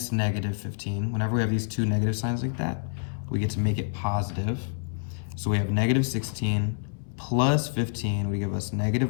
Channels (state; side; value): silent; right; 60 dB below the other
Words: negative 15, whenever we have these two negative signs like that, we get to make it positive. So we have negative 16 plus 15 would give us